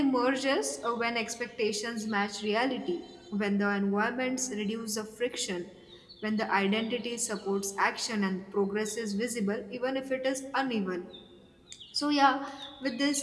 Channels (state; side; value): identical; both; correlation 1.00